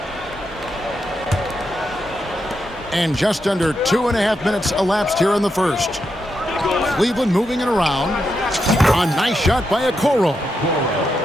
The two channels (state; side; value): normal; both; correlation 0.84